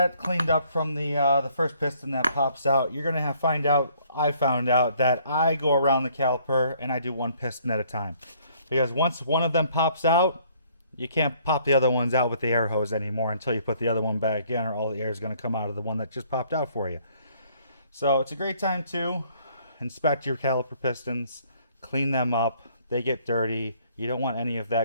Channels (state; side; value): inverted; both; correlation -0.63